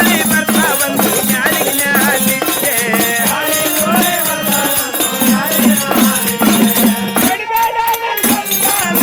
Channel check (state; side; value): identical; both; correlation 1.00